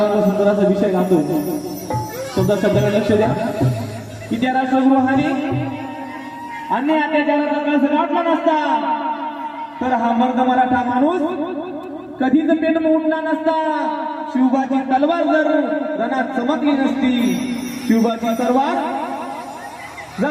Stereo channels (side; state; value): both; identical; correlation 1.00